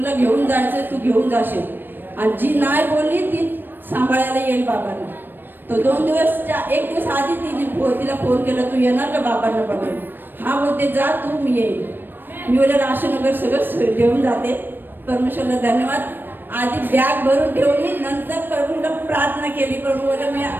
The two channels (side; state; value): left; late; 0.094 ms